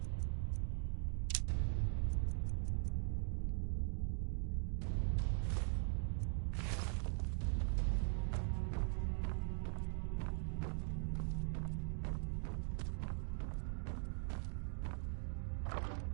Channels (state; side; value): silent; left; 50 dB below the other